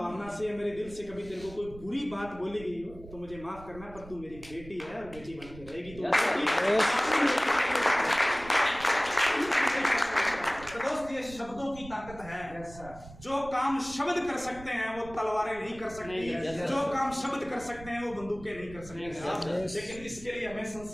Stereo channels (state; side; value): noise; right; rumble, 17 dB below the sound